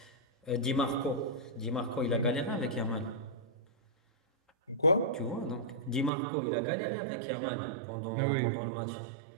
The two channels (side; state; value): left; drops out; at 6.1 s